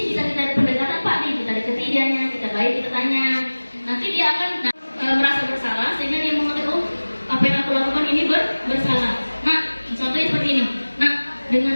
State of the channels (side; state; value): both; inverted; correlation -1.00